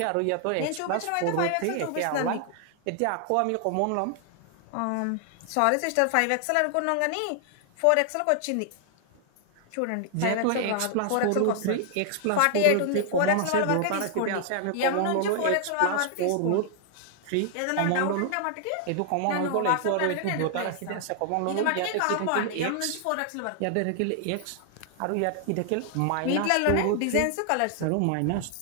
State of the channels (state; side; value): different; both; correlation 0.00